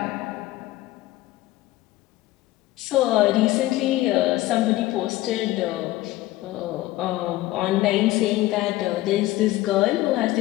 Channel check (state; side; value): quieter; right; 17.0 dB